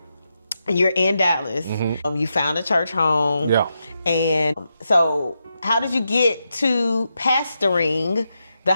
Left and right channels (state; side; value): inverted; both; correlation -0.86